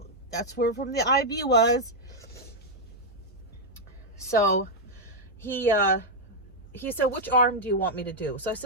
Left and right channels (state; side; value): normal; both; correlation -0.02